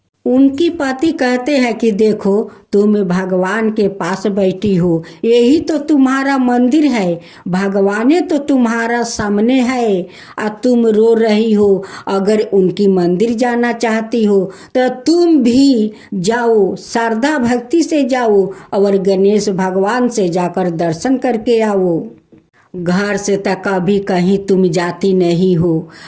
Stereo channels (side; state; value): both; identical; correlation 1.00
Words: उनकी पति कहते हैं कि देखो, तुम भगवान के पास बैठी हो, यही तो तुम्हारा मंदिर है, भगवान तो तुम्हारा सामने है और तुम रो रही हो। अगर उनकी मंदिर जाना चाहती हो तो तुम भी जाओ, श्रद्धा भक्ति से जाओ और गणेश भगवान से जाकर दर्शन करके आओ। घर से तक कभी कहीं तुम जाती नहीं हो,